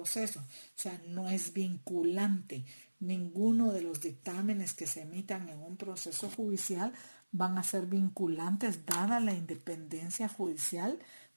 O sea, no es vinculante. Ninguno de los dictámenes que se emitan en un proceso judicial van a ser vinculantes dada la independencia judicial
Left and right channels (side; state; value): both; inverted; correlation -1.00